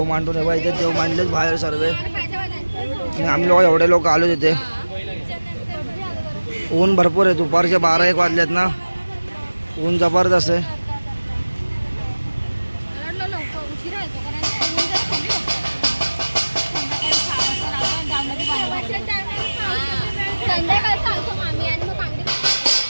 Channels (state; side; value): inverted; both; correlation -1.00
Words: मांडून इथे देव मांडलेच बाहेर सर्व. आणि आम्ही लोक एवढे लोक आलो तिथे. ऊन भरपूर आहे. दुपारचे 12-1 वाजलेत ना. ऊन जबरदस्त आहे.